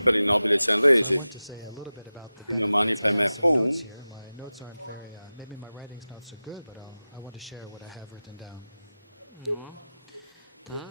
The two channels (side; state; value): both; inverted; correlation -0.96